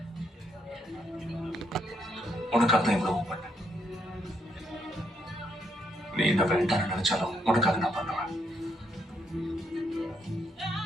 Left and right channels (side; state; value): both; normal; correlation 0.75